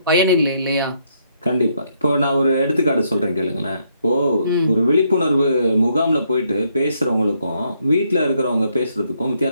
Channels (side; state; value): both; inverted; correlation -0.73